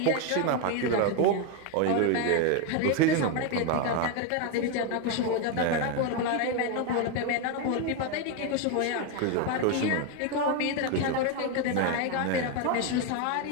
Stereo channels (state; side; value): different; both; correlation 0.02